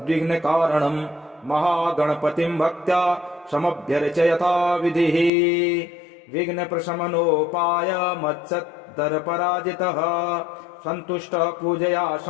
महागणपतिं भक्त्या समभ्यर्चयता विधिः। विघ्नप्रशमनोपाय मत्सत्तरपराजितः सन्तुष्टः पूजया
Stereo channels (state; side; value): drops out; right; at 5.3 s